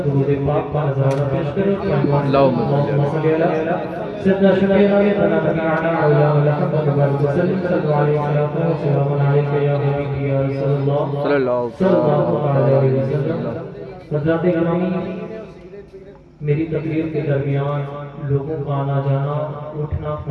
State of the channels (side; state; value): both; identical; correlation 1.00